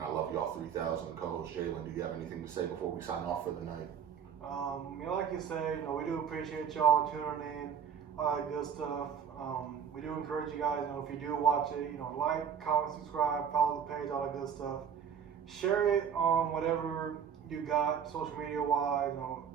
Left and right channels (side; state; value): left; quieter; 7.7 dB